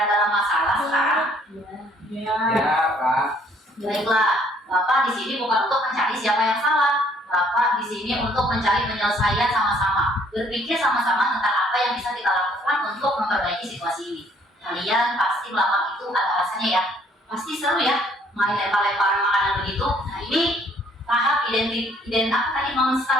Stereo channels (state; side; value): normal; both; correlation 0.62